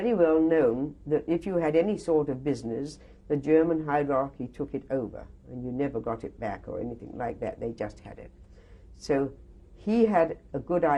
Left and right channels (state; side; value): identical; both; correlation 1.00